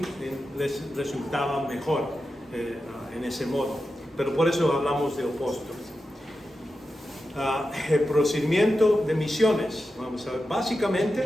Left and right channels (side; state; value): both; normal; correlation 0.90